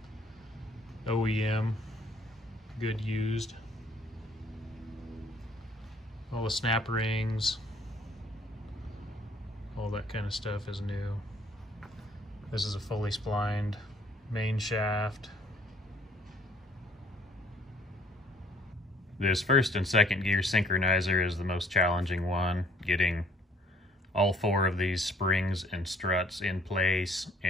OEM, good used. All the snap rings, all that kind of stuff is new. This is a fully splined main shaft. This 1st and 2nd gear synchronizer is the most challenging one, getting all 4 of these springs and struts in place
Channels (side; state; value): both; normal; correlation 0.59